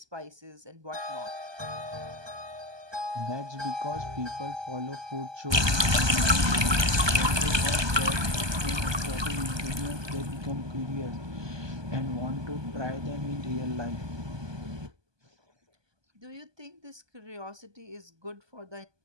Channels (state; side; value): late; left; 1.2 ms